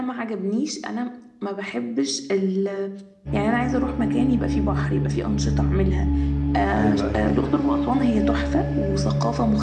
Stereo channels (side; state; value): both; identical; correlation 1.00